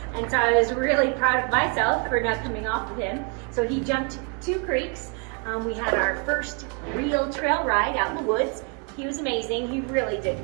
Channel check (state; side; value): quieter; left; 35.6 dB